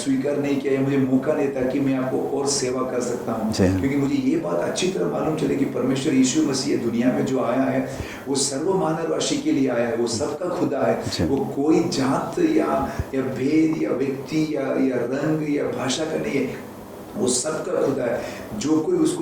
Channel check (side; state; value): both; identical; correlation 1.00